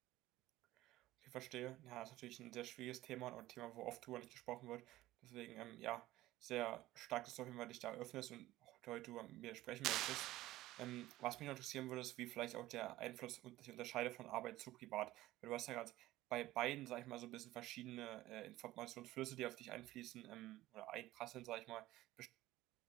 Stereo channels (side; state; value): left; quieter; 16.3 dB